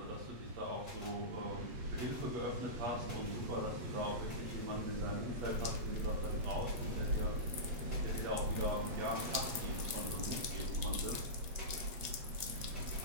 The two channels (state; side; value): late; left; 7.5 ms